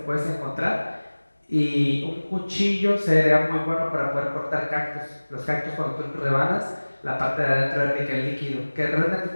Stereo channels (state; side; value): inverted; both; correlation -1.00